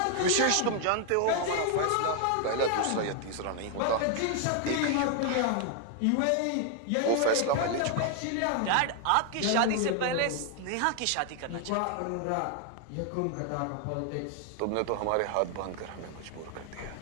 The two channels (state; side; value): different; both; correlation 0.00